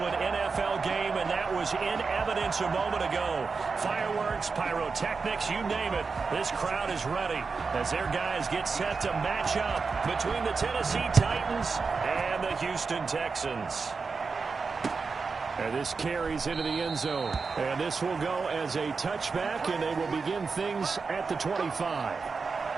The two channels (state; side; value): quieter; left; 4.7 dB